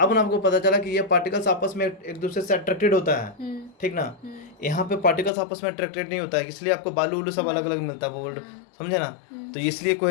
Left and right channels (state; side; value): drops out; right; at 5.3 s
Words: ना आपको पता चला कि ये पार्टिकल्स आपस में एक दूसरे से अट्रैक्टेड होता है, ठीक ना। यहाँ पे पार्टिकल्स आपस में अट्रैक्टेड नहीं होता है, इसलिए आपको बालू उलू सब अलग अलग मिलता है, बोल्ड, समझे ना। तो इसलिए